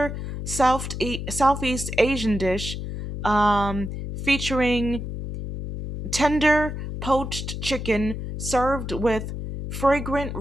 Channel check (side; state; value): left; noise; hum, 6 dB below the sound